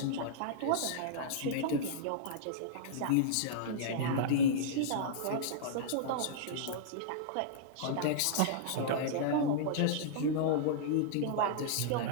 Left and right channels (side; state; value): both; different; correlation -0.02